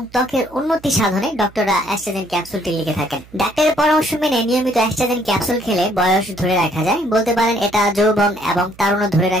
ত্বকের উন্নতি সাধনে ডক্টররা অ্যাস্ট্রাজেন ক্যাপসুলটি লিখে থাকেন। ডাক্তারের পরামর্শ মেনে নিয়মিত অ্যাস্ট্রাজেন ক্যাপসুল খেলে বয়স ধরে রাখা যায়। বলতে পারেন এটা যৌবন এবং তারুণ্য ধরে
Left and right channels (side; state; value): right; noise; hum, 24 dB below the sound